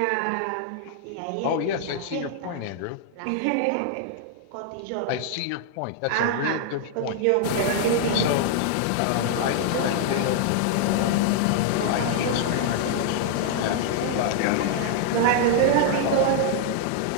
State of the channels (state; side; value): different; both; correlation 0.00